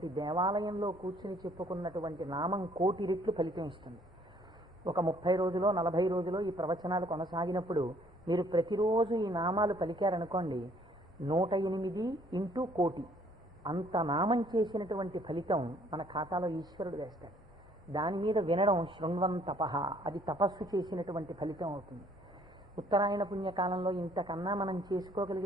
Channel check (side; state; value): both; normal; correlation 0.61